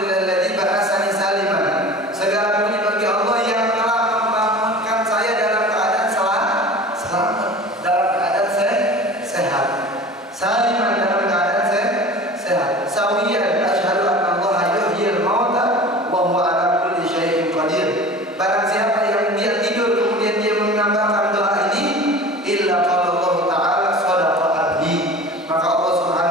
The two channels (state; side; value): normal; both; correlation 0.38